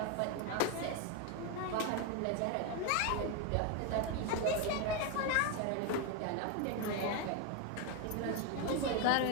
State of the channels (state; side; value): different; both; correlation 0.01